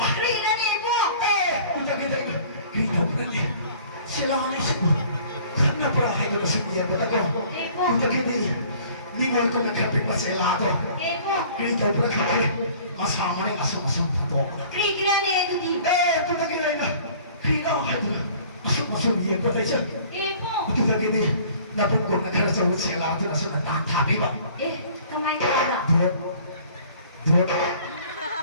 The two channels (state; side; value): inverted; both; correlation -0.51